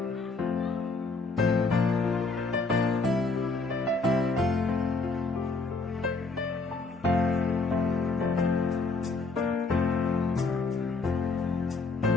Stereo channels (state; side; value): quieter; right; 3.8 dB